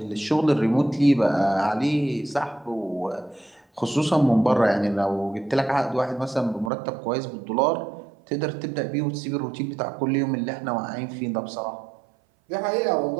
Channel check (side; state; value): left; drops out; at 6.7 s